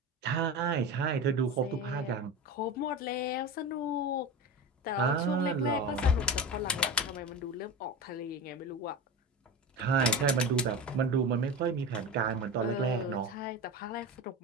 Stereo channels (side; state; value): both; normal; correlation 0.25